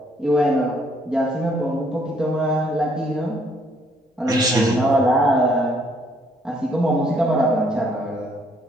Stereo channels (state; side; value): normal; both; correlation 0.67